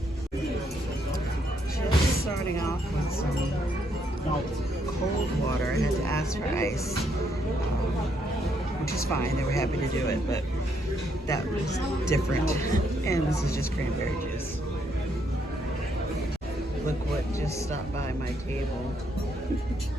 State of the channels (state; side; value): normal; both; correlation 0.74